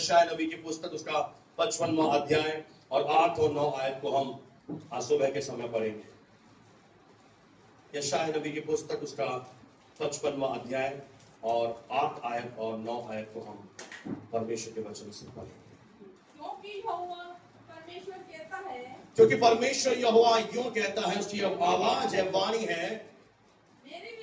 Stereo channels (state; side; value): identical; both; correlation 1.00